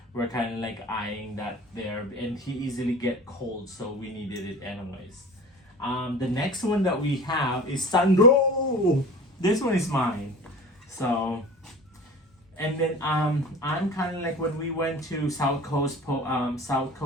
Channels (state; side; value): normal; both; correlation 0.38